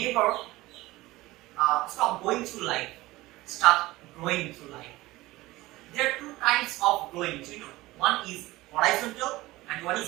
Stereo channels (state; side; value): quieter; left; 18.9 dB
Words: stop going through life, start growing through life. There are two kinds of growing, you know. One is horizontal and one